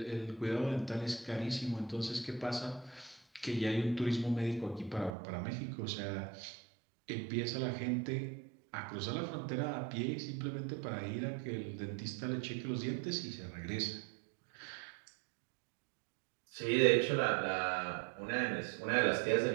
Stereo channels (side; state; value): left; drops out; at 5.2 s